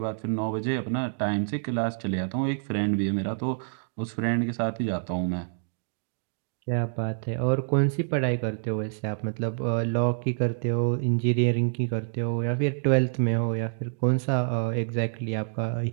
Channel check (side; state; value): left; silent; digital silence